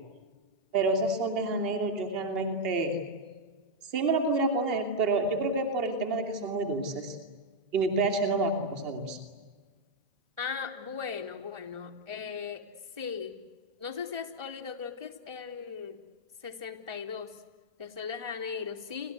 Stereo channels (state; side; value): late; left; 1.4 ms